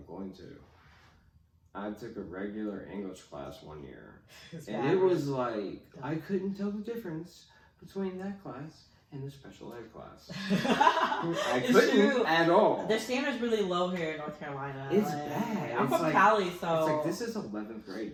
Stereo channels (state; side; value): identical; both; correlation 1.00